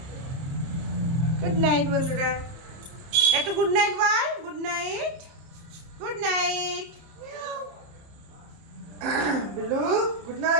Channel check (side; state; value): left; late; 30 ms